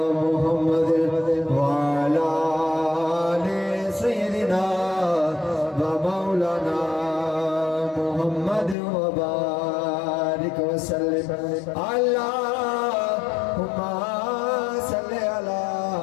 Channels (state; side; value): drops out; right; at 8.8 s